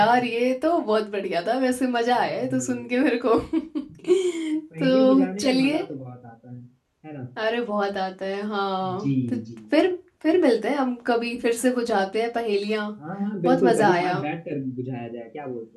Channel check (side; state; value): both; identical; correlation 1.00